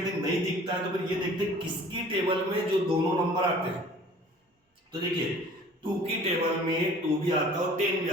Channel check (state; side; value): normal; both; correlation 0.49